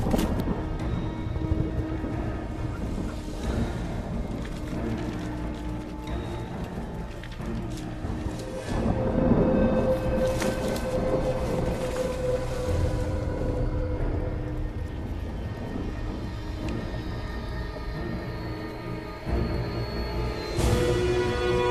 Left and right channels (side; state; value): both; identical; correlation 1.00